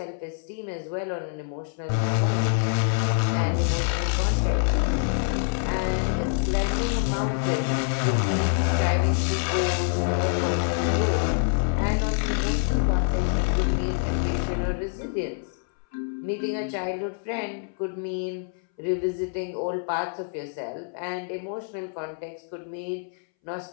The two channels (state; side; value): silent; right; 61 dB below the other